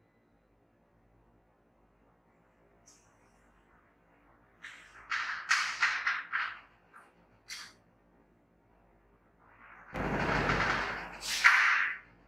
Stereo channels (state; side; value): identical; both; correlation 1.00